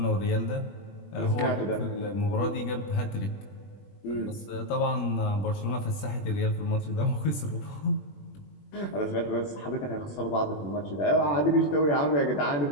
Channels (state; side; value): late; right; 21 ms